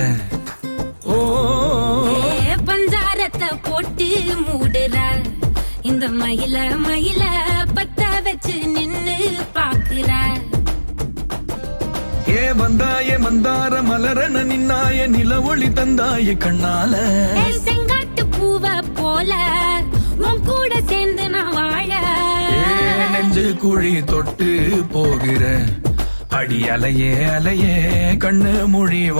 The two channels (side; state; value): both; inverted; correlation -1.00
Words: ஓ பஞ்சாரத்தை போட்டு மூடுற இந்த மயில மயில பத்த வச்சு நின்னு பாக்குற. ஏ வந்தாய மந்தார மலரன நின்னாய நில ஒளி தந்தாய கண்ணால. செங்காட்டு பூவ போல உன் கூட சேர்ந்து நான் வாழ. நெஞ்சு குழி தொட்டு போகிற அடி அலையே அலையே கண்ணு மொழி